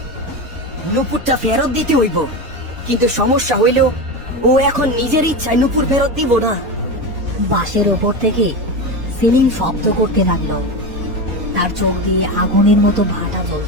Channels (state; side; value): late; left; 4.2 ms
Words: নূপুরটা ফেরত দিতে হইব, কিন্তু সমস্যা হইল ও এখন নিজের ইচ্ছায় নূপুর ফেরত দিব না। বাঁশের উপর থেকে সেলিম শব্দ করতে লাগলো। তার চোখ দিয়ে আগুনের মতো ভাটা